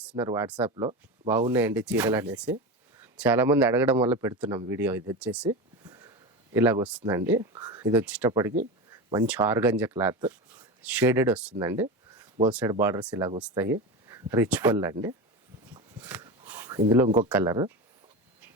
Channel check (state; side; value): normal; both; correlation 0.23